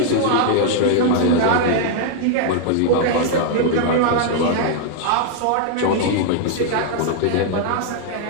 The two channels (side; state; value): both; different; correlation 0.00